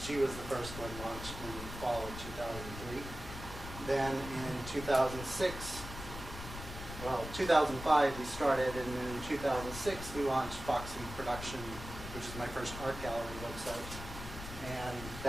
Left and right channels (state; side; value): noise; left; rumble, 10 dB below the sound